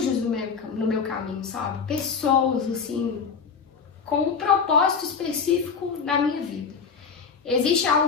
no meu caminho, sabe? Pessoas, assim, com um propósito específico na minha vida. Existe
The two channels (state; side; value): quieter; right; 5.8 dB